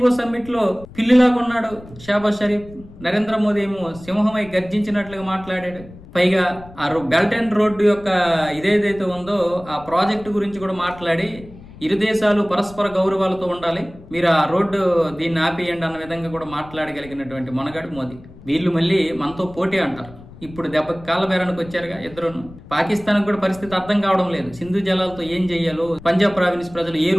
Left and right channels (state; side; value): noise; left; rumble, 19 dB below the sound